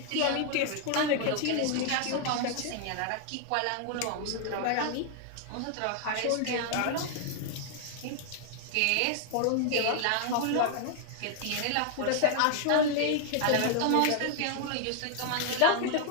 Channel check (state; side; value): different; both; correlation 0.00